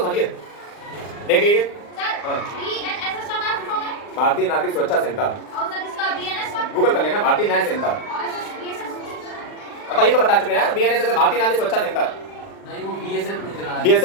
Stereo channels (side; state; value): right; late; 39 ms